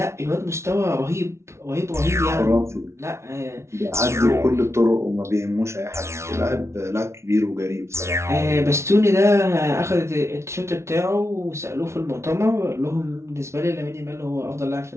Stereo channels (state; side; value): late; left; 0.13 ms